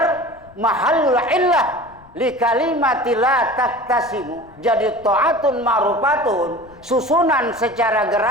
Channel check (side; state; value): left; noise; rumble, 25 dB below the sound